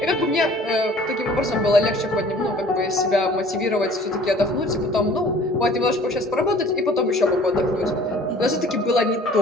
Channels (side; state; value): both; normal; correlation 0.50